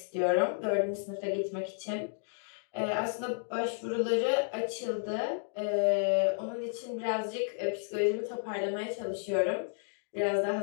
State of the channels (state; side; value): silent; right; digital silence